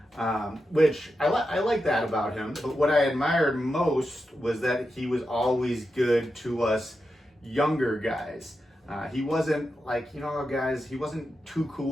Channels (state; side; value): normal; both; correlation 0.89